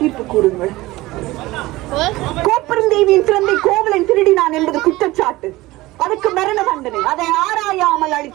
தீர்ப்பு கூறுங்கள். கோப்பெருந்தேவியின் சிறந்தை கோவலன் திருடினான் என்பது குற்றச்சாட்டு. அதுக்கு மரண தண்டனை. அதை ஆராயாமல்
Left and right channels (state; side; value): quieter; left; 19.1 dB